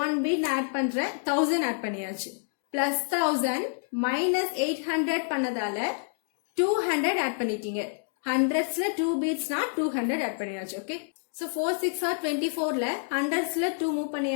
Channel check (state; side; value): silent; right; digital silence